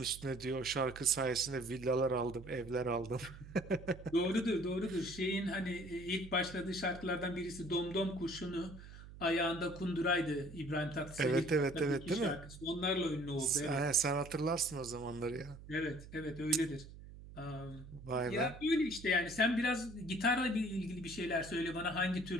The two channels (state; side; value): noise; right; hum, 15 dB below the sound